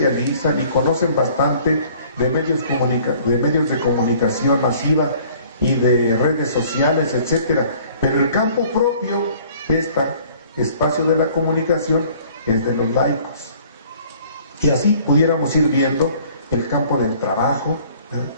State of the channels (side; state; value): both; inverted; correlation -0.54